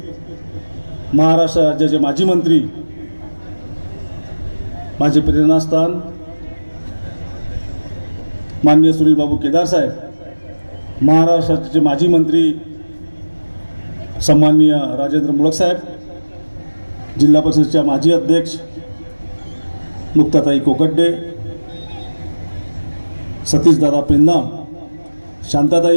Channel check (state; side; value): inverted; both; correlation -1.00